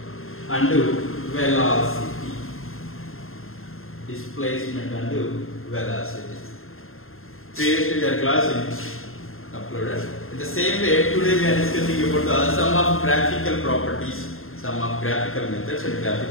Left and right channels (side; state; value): right; late; 0.61 ms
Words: and velocity. Displacement and velocity. Previously we are class in uploaded. In the same way, today we are discussing about some of graphical properties, some of graphical methods and